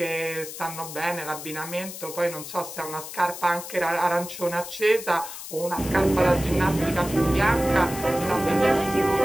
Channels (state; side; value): noise; left; hiss, 11 dB below the sound